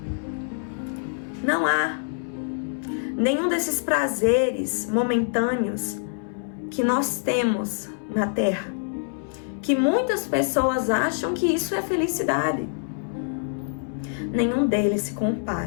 nenhum desses prazeres momentâneos que nós temos na terra, que muitas pessoas acham que isso é felicidade. Nenhum deles se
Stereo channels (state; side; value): silent; right; 61 dB below the other